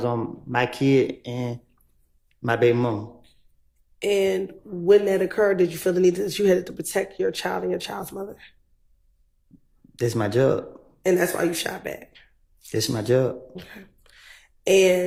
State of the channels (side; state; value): both; identical; correlation 1.00